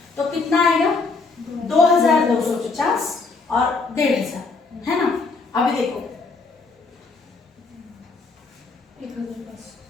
तो कितना आएगा, 2,250 और 1,500, है ना। अभी देखो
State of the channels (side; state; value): right; quieter; 4.1 dB